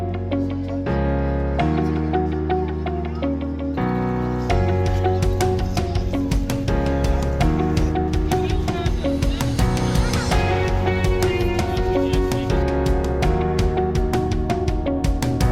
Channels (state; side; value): identical; both; correlation 1.00